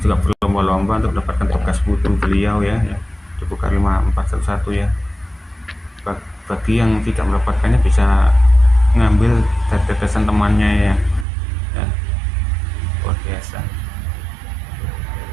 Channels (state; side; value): drops out; left; at 11.2 s